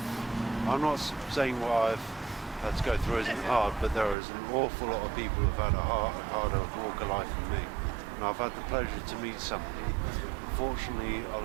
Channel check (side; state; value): left; drops out; at 4.2 s